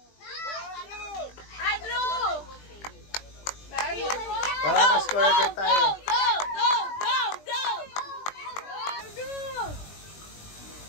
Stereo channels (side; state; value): right; late; 20 ms